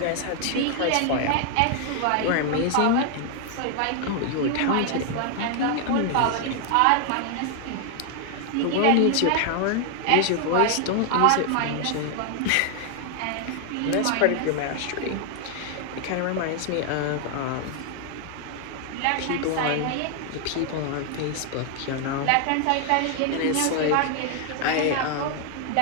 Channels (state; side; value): different; both; correlation 0.00